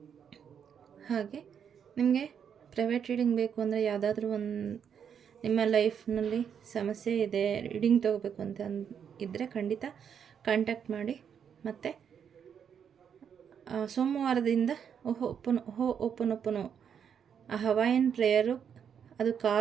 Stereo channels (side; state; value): left; quieter; 7.8 dB